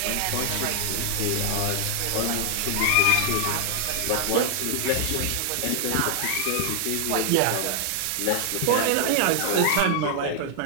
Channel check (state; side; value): different; both; correlation 0.00